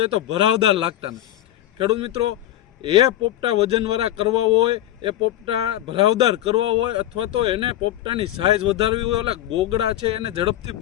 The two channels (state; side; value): quieter; right; 13.2 dB